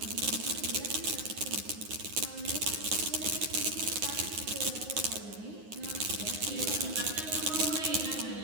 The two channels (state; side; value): late; left; 9.6 ms